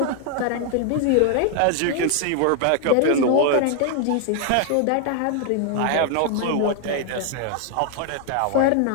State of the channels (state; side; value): different; both; correlation 0.00